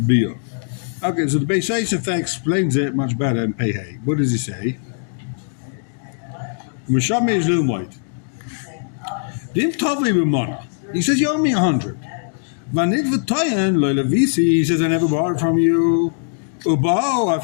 Okay, so the Beis Sefer explains it much better in Pei Hey. What does he say? Meshame is Lilmoid. He says you owe me 100. He says I never borrowed from you. And then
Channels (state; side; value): silent; right; digital silence